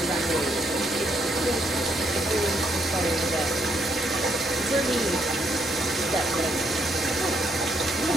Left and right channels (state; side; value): normal; both; correlation 0.74